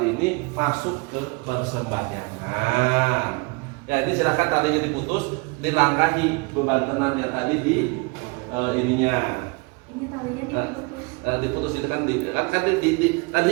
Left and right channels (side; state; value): left; quieter; 29.1 dB